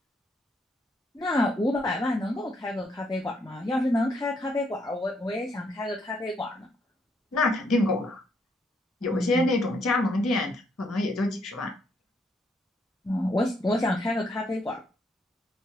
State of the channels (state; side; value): normal; both; correlation 0.73